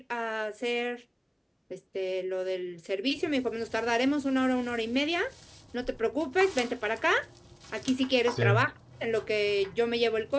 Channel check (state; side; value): identical; both; correlation 1.00